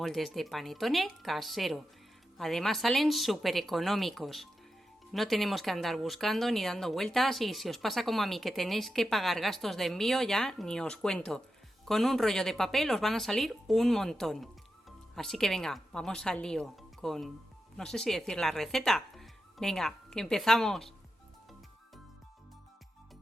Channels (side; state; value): both; normal; correlation 0.89